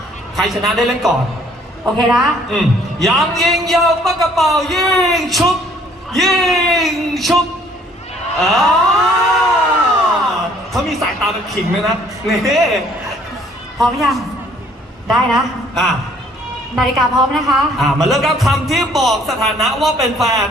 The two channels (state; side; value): normal; both; correlation 0.60